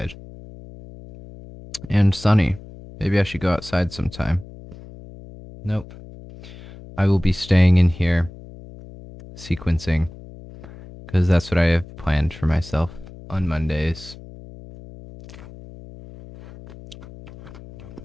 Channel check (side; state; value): left; noise; hum, 17 dB below the sound